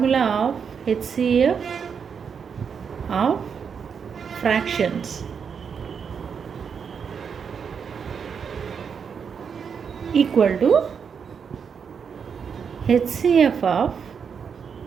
of HCF of fractions? Equal to HCF of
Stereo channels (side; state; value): left; quieter; 6.6 dB